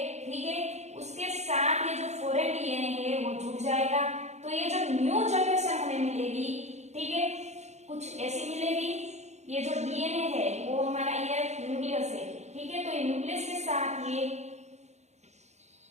ठीक है, उसके साथ ये जो फॉरेन डीएनए है वो जुड़ जाएगा, तो ये जो न्यू जनरेशन हमें मिलेगी, ठीक है, कुछ ऐसी मिलेगी। ये जो डीएनए है वो हमारा ये न्यूक्लियस है, ठीक है, तो ये न्यूक्लियस के साथ ये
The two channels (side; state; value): left; late; 0.33 ms